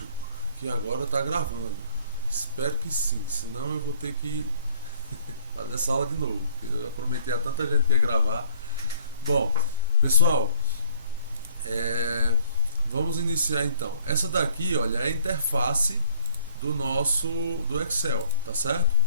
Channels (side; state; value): both; inverted; correlation -0.57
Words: que agora tá gravando. Espero que sim, senão eu vou ter que fazer essa aula de novo. Porque eu já prometi a tanta gente que ia gravar. Bom, pessoal, vamos iniciar então. Essa daqui, olha, é a interface do Excel, tá certo?